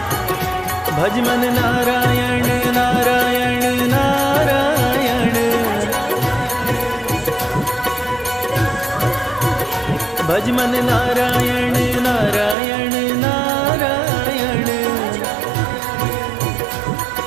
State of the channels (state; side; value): drops out; left; at 12.6 s